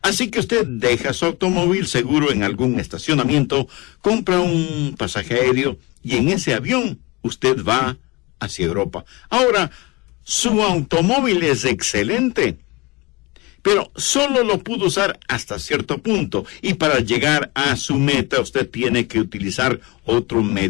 así que usted deja su automóvil seguro en algún estacionamiento, compra un pasaje aéreo y en ese avión usted va hacia Europa. Ahora, su automóvil es excelente, pero solo lo pudo usar hasta cierto punto, y para llegar a su meta usted tiene que utilizar otro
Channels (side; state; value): right; quieter; 24.2 dB